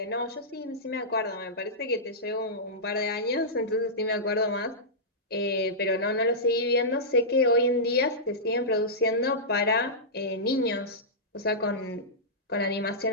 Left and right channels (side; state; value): both; normal; correlation -0.14